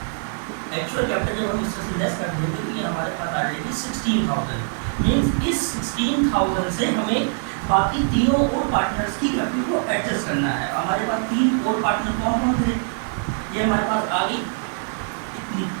एक्चुअल कैपिटल जब हम इससे लेस कर देंगे तो ये हमारे पास आ जाएगी 16,000। मीन्स इस 16,000 से हमें बाकी तीनों और पार्टनर्स की कैपिटल को एडजस्ट करना है। हमारे पास 3 और पार्टनर कौन कौन थे? ये हमारे पास आ गई इतनी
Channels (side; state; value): left; silent; 63 dB below the other